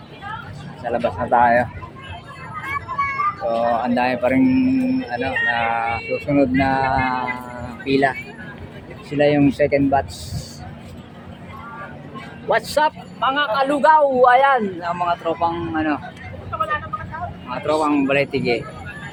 Sa labas na tayo. So, ang dami pa rin ano, na susunod na pila. Sila yung second batch. What's up mga kalugaw? Ayan, ang mga tropang ano, mga tropang Balay-Tige.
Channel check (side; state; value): both; identical; correlation 1.00